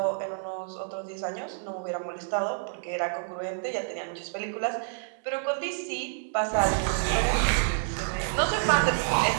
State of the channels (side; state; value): left; silent; digital silence